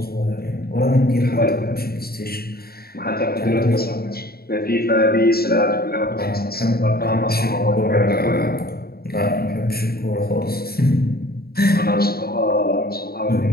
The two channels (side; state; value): right; late; 0.45 ms